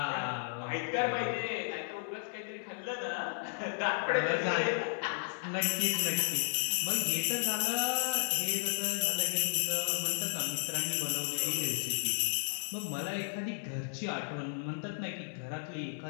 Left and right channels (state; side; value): silent; right; digital silence